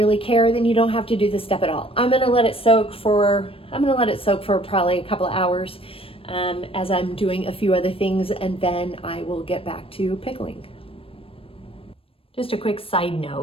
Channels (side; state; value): right; late; 0.27 ms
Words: care, then you don't have to do this step at all. I'm gonna let it soak for probably a couple of hours as I'm doing a few other things, and then I will get back to pickling. Just a quick side